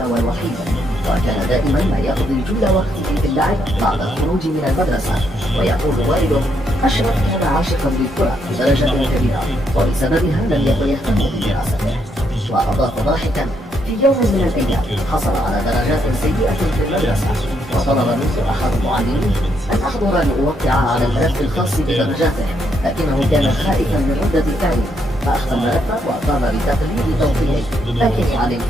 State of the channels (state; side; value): normal; both; correlation 0.76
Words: والوحيد، وكان دائما ما يقضي جل وقته في اللعب بعد الخروج من المدرسة. ويقول والده: أشرف كان عاشقا للكرة بدرجة كبيرة، وبسببها لم يكن يهتم بدراسته. وأضاف ضاحكا: في يوم من الأيام حصل على درجات سيئة في المدرسة، وطلب منه أحد المعلمين أن أحضر لأوقع على الملف الخاص بدرجاته، لكنه كان خائفا من ردة فعله، فأخذ الملف وقام بتقليد توقيعه، لكني علمت